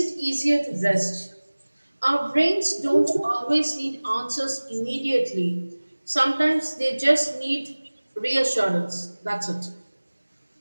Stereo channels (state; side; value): inverted; both; correlation -1.00